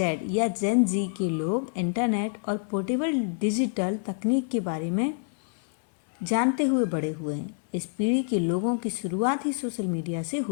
या जेन जी के लोग इंटरनेट और पोर्टेबल डिजिटल तकनीक के बारे में जानते हुए बड़े हुए हैं। इस पीढ़ी के लोगों की शुरुआत ही सोशल मीडिया से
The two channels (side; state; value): right; silent; 60 dB below the other